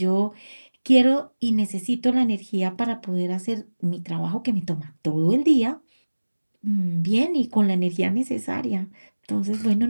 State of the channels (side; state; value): both; inverted; correlation -1.00